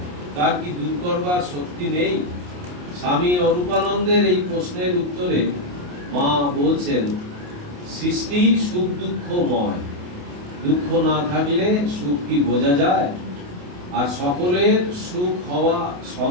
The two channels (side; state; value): left; late; 28 ms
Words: তার কি দূর করবার শক্তি নেই? স্বামী অরূপানন্দের এই প্রশ্নের উত্তরে মা বলছেন, সৃষ্টি সুখ দুঃখময়, দুঃখ না থাকলে সুখ কি বোঝা যায়? আর সকলের সুখ হওয়া